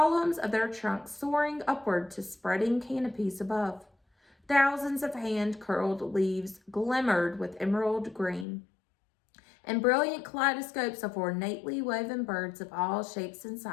of their trunks soaring upward to spreading canopies above. Thousands of hand-curled leaves glimmered with emerald green, and brilliant kaleidoscopes of ornately woven birds of all shapes and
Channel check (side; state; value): right; drops out; at 8.5 s